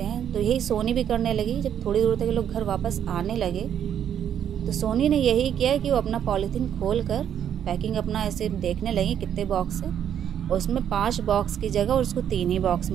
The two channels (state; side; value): quieter; left; 9.3 dB